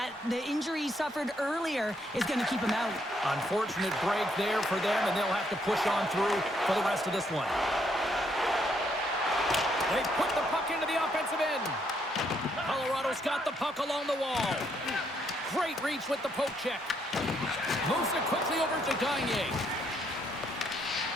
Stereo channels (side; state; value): both; normal; correlation 0.73